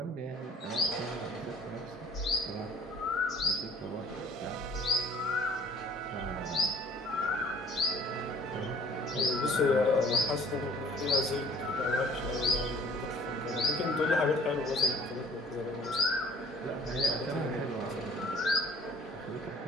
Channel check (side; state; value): both; normal; correlation 0.53